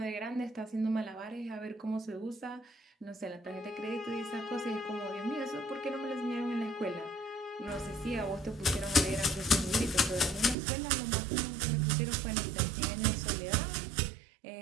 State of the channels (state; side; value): drops out; left; at 10.6 s